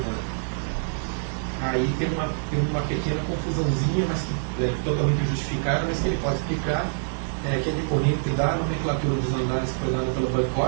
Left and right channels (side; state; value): left; silent; digital silence